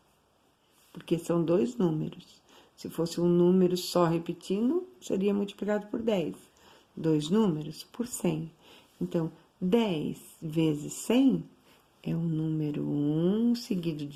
Porque são 2 números. Se fosse um número só repetindo, seria multiplicado por 10. 2 números por 100. Então, 10 vezes 100 é o número 1 seguido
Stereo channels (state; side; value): identical; both; correlation 1.00